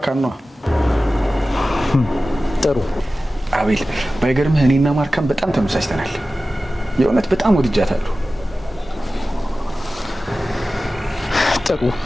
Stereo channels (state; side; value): normal; both; correlation 0.95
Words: ነው። ጥሩ አቤል፣ ባይገርምህ እኔና ማርካን በጣም ተመሳስተናል። የእውነት በጣም ወድጃታለሁ። ጥሩ